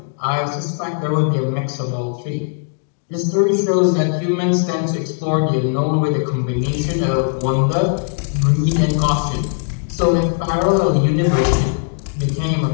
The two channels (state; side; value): silent; right; digital silence